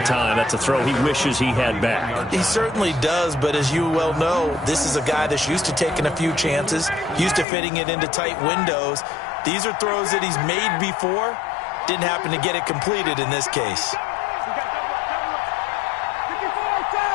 time. That's a throw he wishes he had back. He certainly does, but as you well know, this is a guy that's used to taking a few chances, used to fitting it into tight windows. These are throws that he's made before. Didn't happen to get it completed in this case.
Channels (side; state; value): right; drops out; at 7.5 s